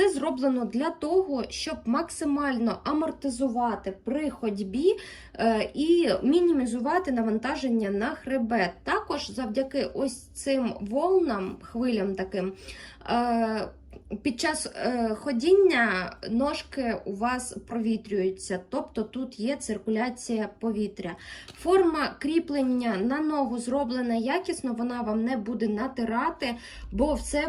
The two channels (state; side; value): identical; both; correlation 1.00